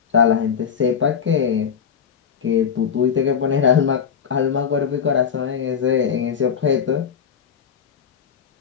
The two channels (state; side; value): quieter; right; 7.3 dB